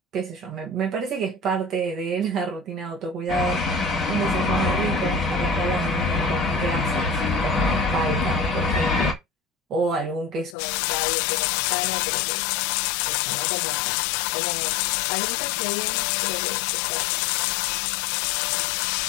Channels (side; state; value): right; drops out; at 10.6 s